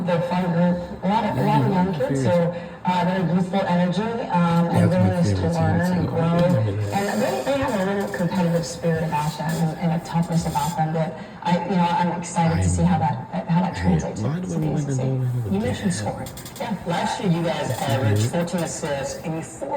They're a fun group. A lot of young kids. So they're youthful energy and willingness to learn and grow. And they have a little competitive spirit about them and a toughness about them that I'm excited to see how that translates to the ACC. You mentioned scoring. Yeah. Last year, you guys averaged 14 assists and you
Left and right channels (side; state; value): both; identical; correlation 1.00